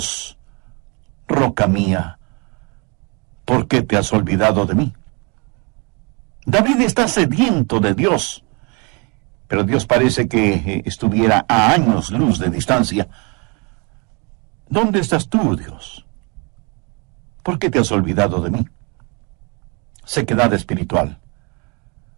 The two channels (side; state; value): left; quieter; 32.1 dB